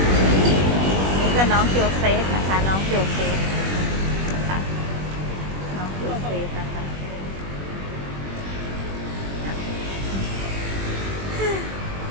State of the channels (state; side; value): late; left; 21 ms